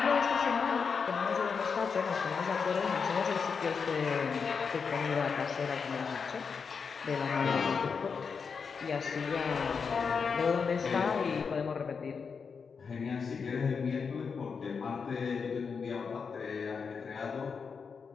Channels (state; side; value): quieter; right; 5.7 dB